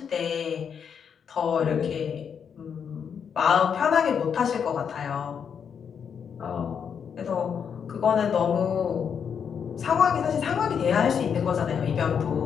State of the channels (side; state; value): right; quieter; 7.2 dB